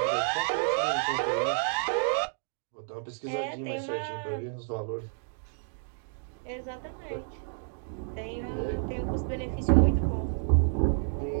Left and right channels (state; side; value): silent; left; digital silence